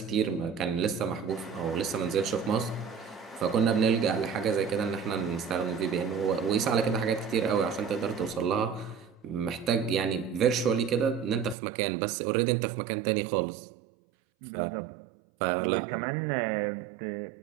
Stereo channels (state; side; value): drops out; left; at 11.6 s